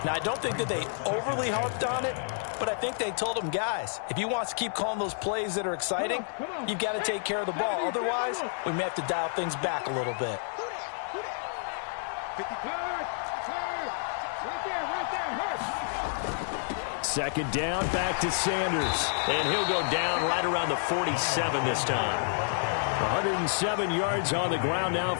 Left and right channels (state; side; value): silent; right; digital silence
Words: Now, I don't think that they overly harped on it, but I think they told them, guys, if you want to keep calling those plays that are exciting, you've got to take care of the ball. Otherwise, we may have to dial things back a little bit. Second down, back to Sanders. And he'll go down right around the 47 this time. 107 yards on the ground now